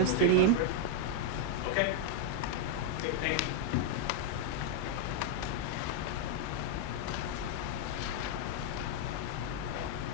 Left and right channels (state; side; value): different; both; correlation 0.00